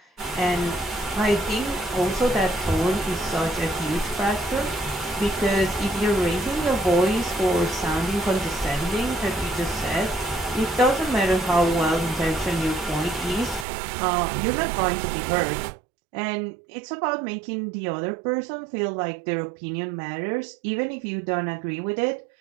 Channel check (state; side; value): drops out; left; at 13.7 s